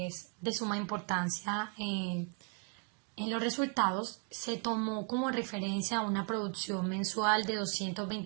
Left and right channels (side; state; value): left; quieter; 38.7 dB